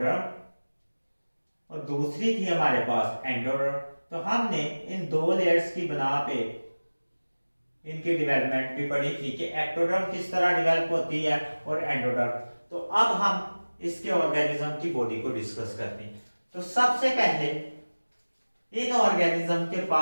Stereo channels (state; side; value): inverted; both; correlation -1.00